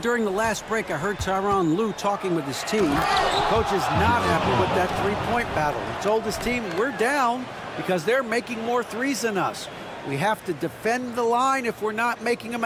the last break, I heard Tyronn Lue talking with his team. The coach is not happy with that 3-point battle. He told his team, we're down because they're making more threes than us. We have to defend the line if we're not making them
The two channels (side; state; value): both; identical; correlation 1.00